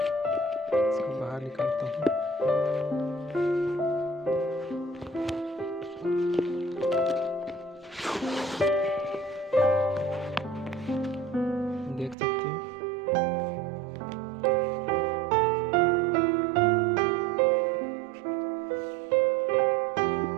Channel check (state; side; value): drops out; left; at 12.2 s